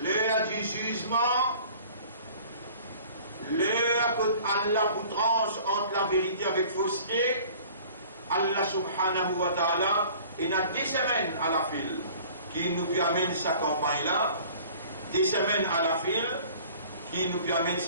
du jugement, l'heure que Allah vous tranche entre la vérité avec fausseté. Allah subhanahu wa ta'ala, il a 10 semaines à la file qui nous amène sa campagne-là, 10 semaines à la file qui nous amène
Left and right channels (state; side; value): inverted; both; correlation -0.48